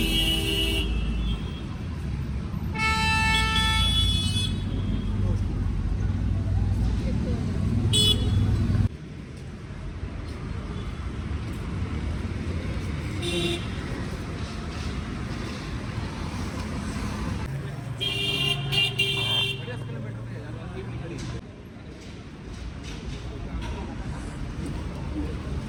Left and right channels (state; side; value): identical; both; correlation 1.00